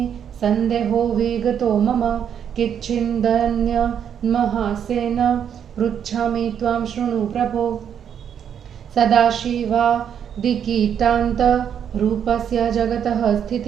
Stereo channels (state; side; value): quieter; left; 8.5 dB